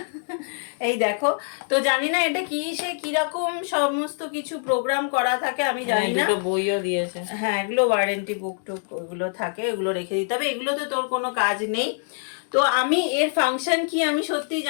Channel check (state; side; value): silent; right; 62 dB below the other